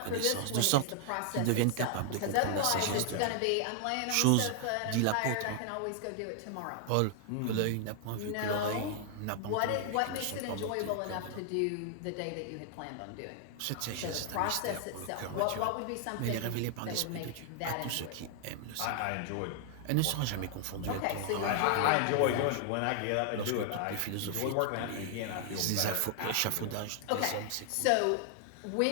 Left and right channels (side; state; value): both; different; correlation 0.00